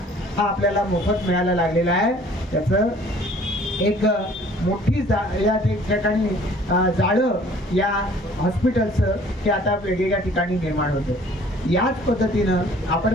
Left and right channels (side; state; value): both; normal; correlation 0.54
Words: हा आपल्याला मोफत मिळायला लागलेला आहे. त्याचं एक मोठी या ठिकाणी जाळं या हॉस्पिटलचं हे आता वेगवेगळ्या ठिकाणी निर्माण होतं. याच पद्धतीनं आपण